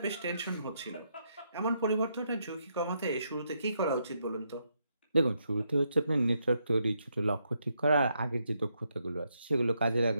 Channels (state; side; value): inverted; both; correlation -0.78